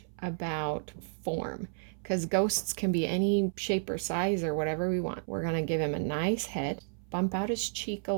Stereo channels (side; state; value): left; silent; 57 dB below the other